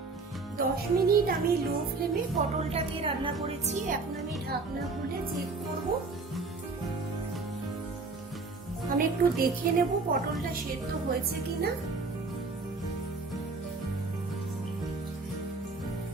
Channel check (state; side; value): quieter; left; 3.9 dB